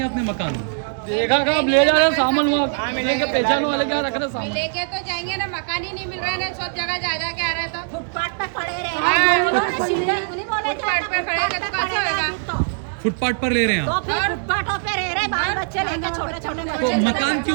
आपने मकान? देखा का अब ले जा रहे हैं सामान, वहाँ लेके पहचान वाले क्या रख रहे सामान। लेके तो जाएंगे ना, मकान ही नहीं मिल रहा है ना, सब जगह जा जा के आ रहे तो फुटपाथ पे खड़े रहे। फुटपाथ पे खड़े तो कैसे होगा? फुटपाथ पर ले रहे हैं तो आप? फिर फुटपाथों पे रह रहे, बाल बच्चे लेके छोटे छोटे तो बच्चे। मकान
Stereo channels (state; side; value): silent; left; digital silence